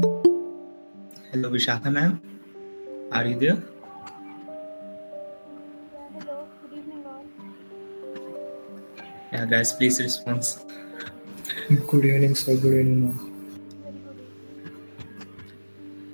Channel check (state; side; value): inverted; both; correlation -1.00